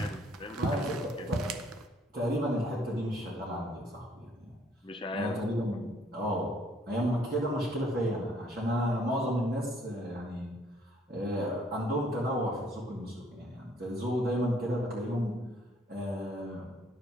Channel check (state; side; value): normal; both; correlation 0.63